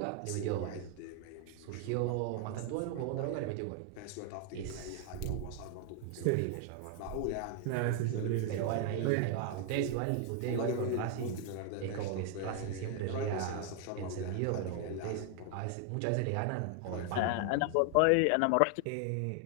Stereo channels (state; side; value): different; both; correlation 0.00